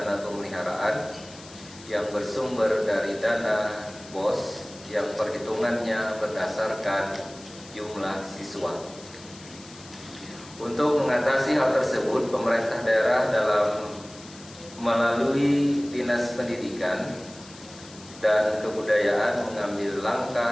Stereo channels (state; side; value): noise; left; hiss, 19 dB below the sound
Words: pemeliharaan yang bersumber dari dana BOS yang perhitungannya berdasarkan jumlah siswa. Untuk mengatasi hal tersebut, pemerintah daerah melalui Dinas Pendidikan dan Kebudayaan mengambil